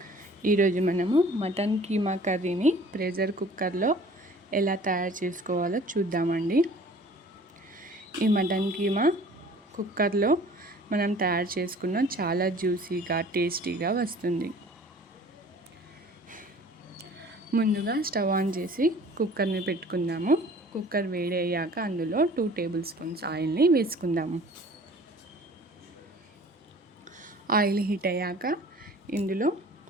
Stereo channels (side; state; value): both; normal; correlation 0.49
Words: ఈరోజు మనము మటన్ కీమా కర్రీని ప్రెషర్ కుక్కర్లో ఎలా తయారు చేసుకోవాలో చూద్దామండి. ఈ మటన్ కీమా కుక్కర్లో మనం తయారు చేసుకున్న చాలా జ్యూసీగా టేస్టీగా వస్తుంది. ముందుగా స్టవ్ ఆన్ చేసి కుక్కర్ని పెట్టుకుందాము. కుక్కర్ వేడి అయ్యాక అందులో 2 టేబుల్ స్పూన్స్ ఆయిల్ని వేసుకుందాము. ఆయిల్ హీట్ అయ్యాక ఇందులో